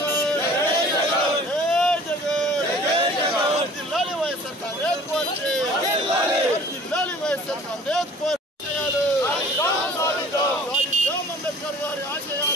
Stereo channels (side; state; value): both; normal; correlation 0.48